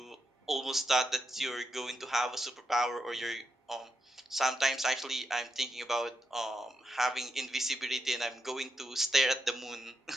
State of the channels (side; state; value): both; normal; correlation 0.84